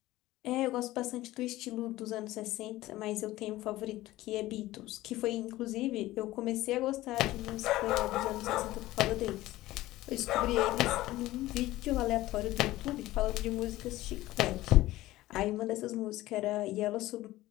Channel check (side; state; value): right; quieter; 16.8 dB